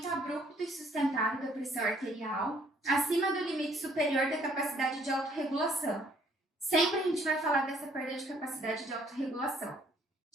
abrupto e sustentado da pressão arterial, acima do limite superior da capacidade de autorregulação. Sempre a gente vai falar dessa perda de capacidade de autorregulação.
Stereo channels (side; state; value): both; normal; correlation 0.63